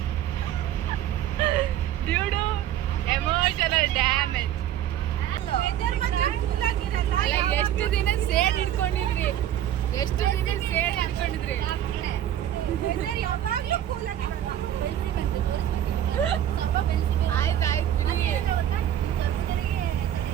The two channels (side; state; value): left; quieter; 11.3 dB